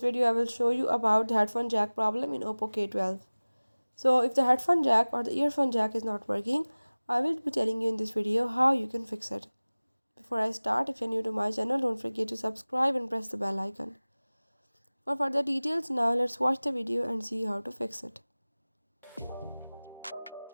video I will show you about the headphone jack problem in Oppo K12. So if the headphone jack or the earphone jack is not working, I will be telling you in this video how you can fix it. Before I start, if you are new to my channel, don't forget to subscribe and press the bell icon. For further details, now let's watch the video and see how to fix it.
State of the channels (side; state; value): both; inverted; correlation -1.00